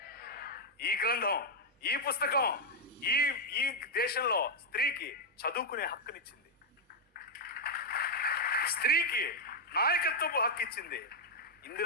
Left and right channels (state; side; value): normal; both; correlation -0.01